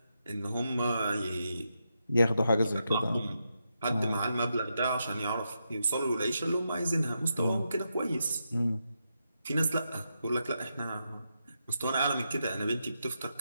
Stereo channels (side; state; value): both; inverted; correlation -0.85